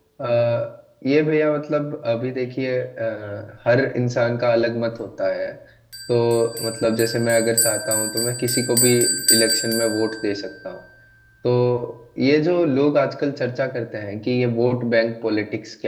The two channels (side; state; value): both; identical; correlation 1.00